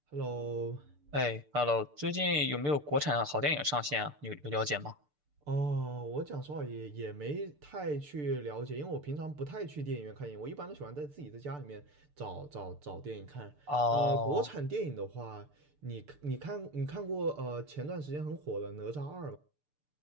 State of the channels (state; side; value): late; left; 6.8 ms